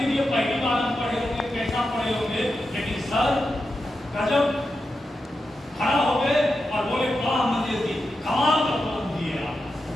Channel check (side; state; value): both; normal; correlation 0.89